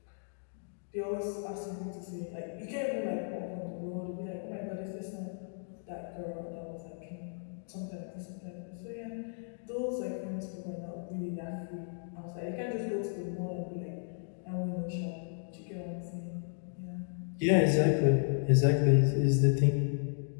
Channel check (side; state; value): right; silent; digital silence